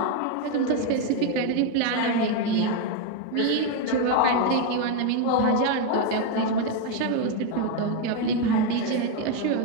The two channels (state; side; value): different; both; correlation 0.02